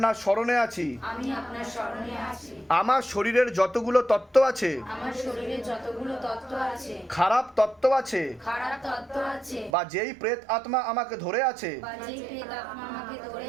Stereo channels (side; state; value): left; drops out; at 9.7 s